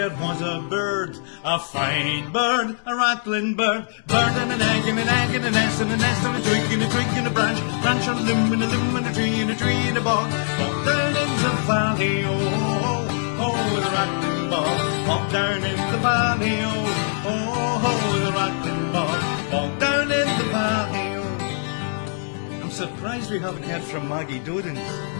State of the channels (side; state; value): right; silent; digital silence